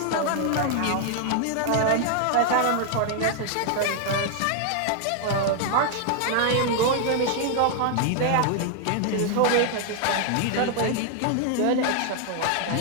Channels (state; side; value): different; both; correlation 0.00